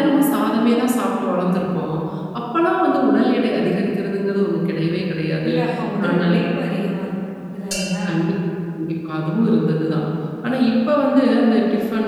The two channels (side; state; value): both; identical; correlation 1.00